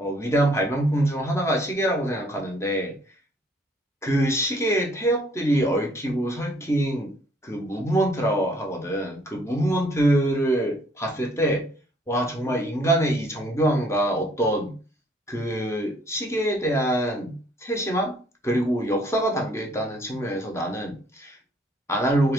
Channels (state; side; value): normal; both; correlation 0.62